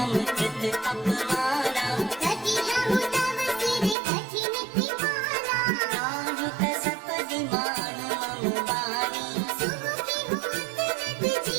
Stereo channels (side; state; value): left; drops out; at 4.0 s